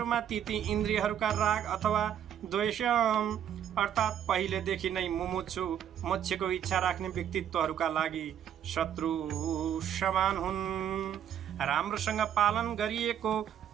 ती इन्द्रियहरूका राग अथवा द्वेष अर्थात् पहिलेदेखि नै मुमुक्षु मोक्षको इच्छा राख्ने व्यक्तित्वहरूका लागि शत्रु समान हुन्। राम्रोसँग पालन गरिएको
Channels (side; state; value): left; quieter; 9.6 dB